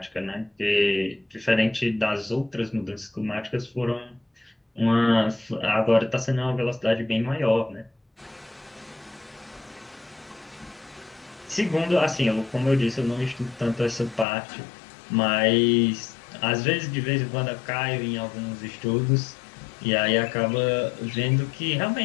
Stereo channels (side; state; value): right; drops out; at 14.2 s